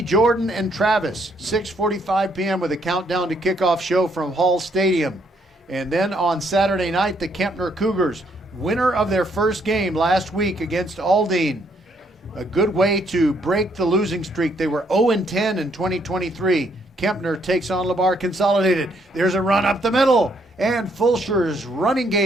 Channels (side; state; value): both; normal; correlation 0.70